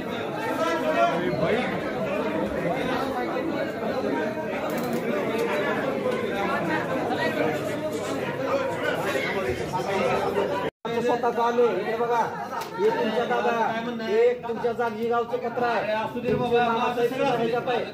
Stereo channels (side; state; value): both; identical; correlation 1.00